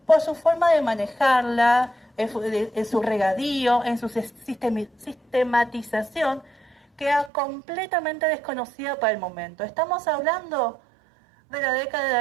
Por su forma de manejarla, en su regadío, en su sistematización, que era completamente desconocida para el momento. Estamos hablando de la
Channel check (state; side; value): drops out; left; at 7.3 s